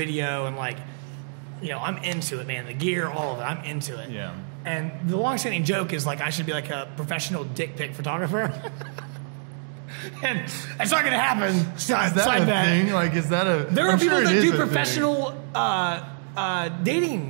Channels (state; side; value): silent; left; digital silence